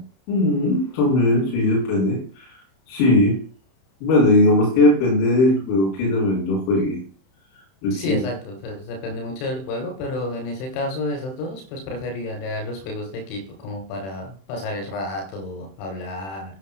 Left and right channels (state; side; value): late; right; 31 ms